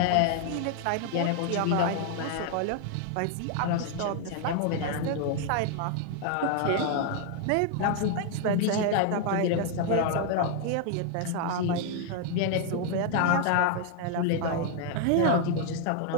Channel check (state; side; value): different; both; correlation 0.00